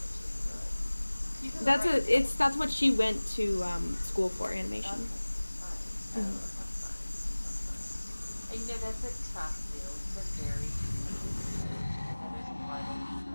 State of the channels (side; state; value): both; inverted; correlation -1.00